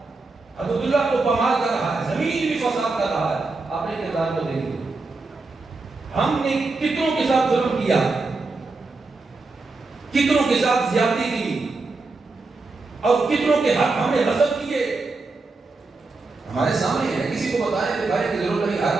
حدود اللہ کو پامال کر رہا ہے، زمین بھی فساد کر رہا ہے۔ آپ نے کردار کو دیکھیں، ہم نے کتنوں کے ساتھ ظلم کیا، کتنوں کے ساتھ زیادتی کی، اور کتنوں کے حق ہم نے غصب کیے، ہمارے سامنے ہے، کسی کو بتائیں دکھانے کی ضرورت نہیں، ہر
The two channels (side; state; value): left; quieter; 3.6 dB